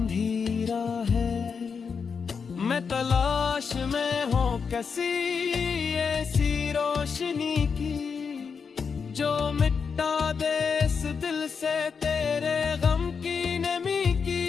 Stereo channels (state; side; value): quieter; right; 5.9 dB